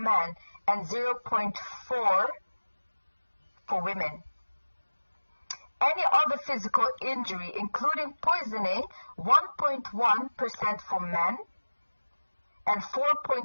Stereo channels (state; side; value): inverted; both; correlation -1.00